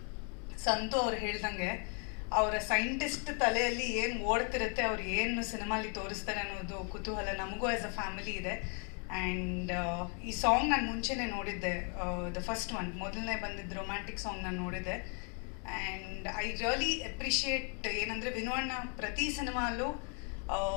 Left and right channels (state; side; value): quieter; right; 39.3 dB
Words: ಸಂತು ಅವ್ರು ಹೇಳ್ದಂಗೆ ಅವರ ಸೈಂಟಿಸ್ಟ್ ತಲೆಯಲ್ಲಿ ಏನು ಓಡ್ತಿರುತ್ತೆ, ಅವ್ರು ಏನು ಸಿನಿಮಾಲಿ ತೋರಿಸ್ತಾರೆ ಅನ್ನೋದು ಕುತೂಹಲ ನಮಗೂ ಆ್ಯಸ್ ಅ ಫ್ಯಾಮಿಲಿ ಇದೆ. ಆ್ಯಂಡ್ ಈ ಸಾಂಗ್ ನಾನು ಮುಂಚೆನೇ ನೋಡಿದ್ದೆ, ದ ಫಸ್ಟ್ ಒನ್, ಮೊದಲನೇ ಬಂದಿದ್ದು ರೊಮ್ಯಾಂಟಿಕ್ ಸಾಂಗ್ ನಾನು ನೋಡಿದ್ದೆ. ಆ್ಯಂಡ್ ಐ ರಿಯಲಿ ಅಪ್ರಿಷಿಯೇಟ್ ಏನಂದರೆ ವಿನು ಅಣ್ಣ ಪ್ರತಿ ಸಿನಿಮಾಲ್ಲೂ